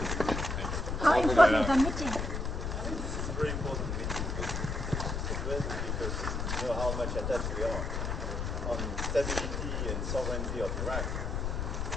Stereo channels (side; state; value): left; noise; rumble, 2 dB below the sound